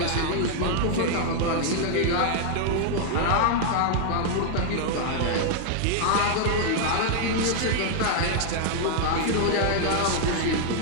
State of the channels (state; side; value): different; both; correlation 0.00